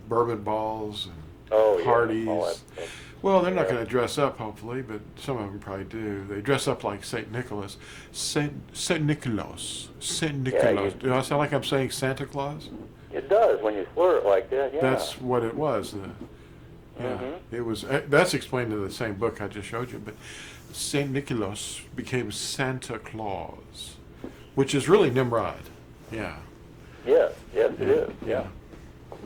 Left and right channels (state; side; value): identical; both; correlation 1.00